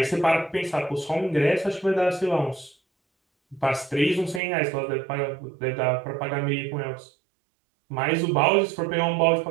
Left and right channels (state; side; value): drops out; left; at 4.4 s